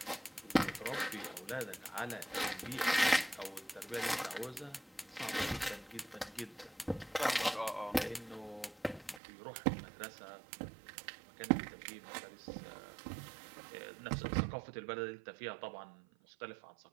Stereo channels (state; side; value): drops out; left; at 9.2 s